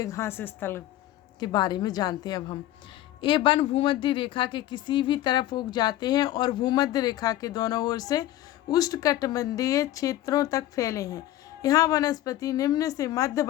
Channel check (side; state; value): right; quieter; 14.2 dB